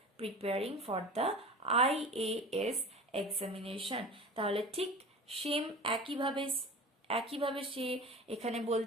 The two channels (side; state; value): both; normal; correlation 0.36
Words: preparing for the IAS examination. তাহলে ঠিক সেম একইভাবে সে এখানে